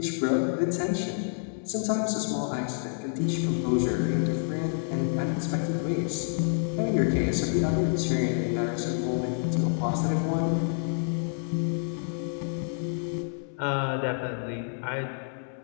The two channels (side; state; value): right; silent; 59 dB below the other